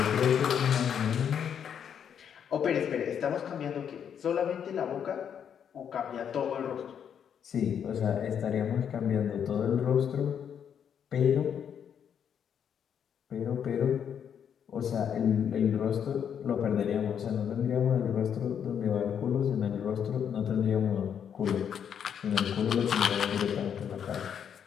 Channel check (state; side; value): quieter; right; 8.2 dB